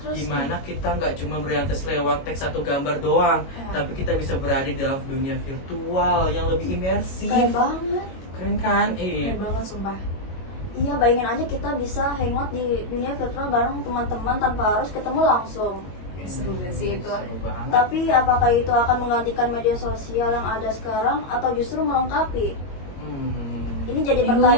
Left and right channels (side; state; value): right; late; 22 ms